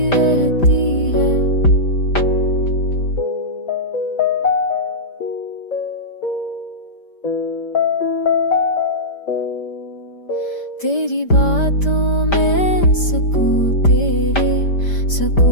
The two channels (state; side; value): late; right; 5.1 ms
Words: रहती है। तेरी बातों में सुकून, तेरे